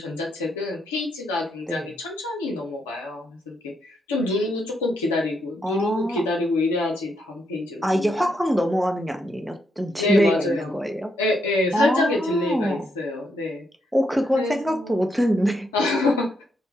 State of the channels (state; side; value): normal; both; correlation 0.78